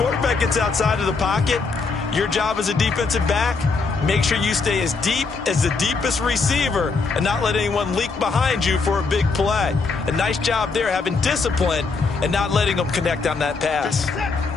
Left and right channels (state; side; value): quieter; right; 4.4 dB